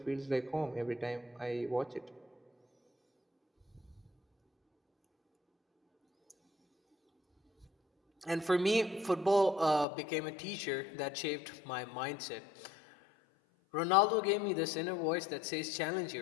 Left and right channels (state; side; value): drops out; right; at 9.9 s